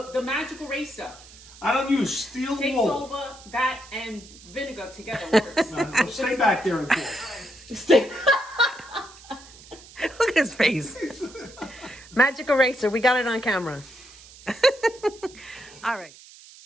The magic eraser I don't use steel takes wool. over that and vinegar together works. No, stay back there and talk. Stay. Look at his face. Magic eraser. We got it on camera. All right.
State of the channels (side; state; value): right; noise; hiss, 20 dB below the sound